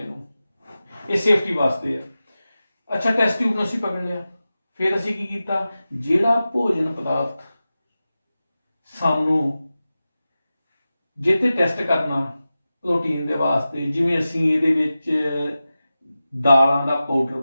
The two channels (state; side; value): inverted; both; correlation -0.94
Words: ਇਹ ਸੇਫਟੀ ਵਾਸਤੇ ਆ। ਅੱਛਾ, ਟੈਸਟ ਟਿਊਬ ਨੂੰ ਅਸੀਂ ਪਕੜ ਲਿਆ, ਫਿਰ ਅਸੀਂ ਕੀ ਕੀਤਾ? ਜਿਹੜਾ ਭੋਜਨ ਪਦਾਰਥ ਸਾਨੂੰ ਜਿੱਥੇ ਟੈਸਟ ਕਰਨਾ ਪ੍ਰੋਟੀਨ ਦੇ ਵਾਸਤੇ, ਜਿਵੇਂ ਅਸੀਂ ਇਹਦੇ ਵਿੱਚ ਦਾਲਾਂ ਦਾ ਪਾਊਡਰ